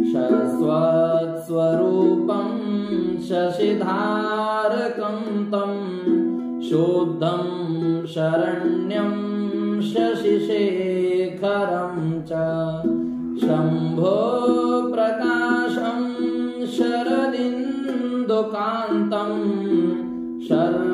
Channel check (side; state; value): both; identical; correlation 1.00